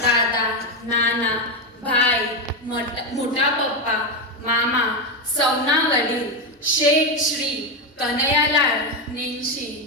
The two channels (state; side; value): normal; both; correlation 0.10